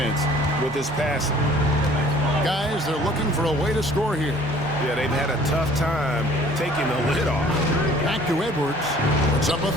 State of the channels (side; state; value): both; normal; correlation 0.53